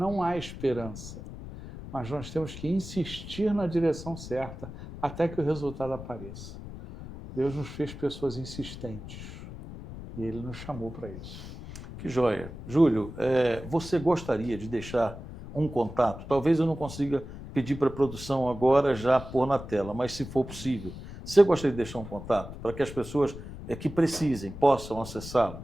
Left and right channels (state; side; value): noise; left; rumble, 12 dB below the sound